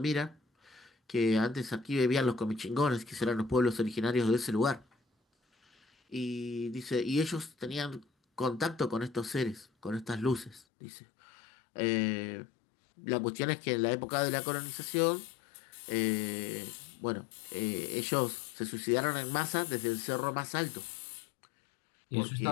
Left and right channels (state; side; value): drops out; right; at 10.7 s